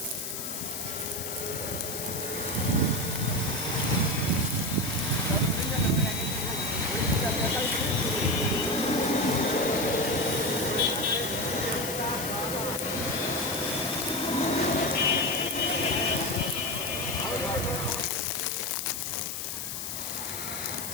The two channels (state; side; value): noise; left; hiss, 5 dB below the sound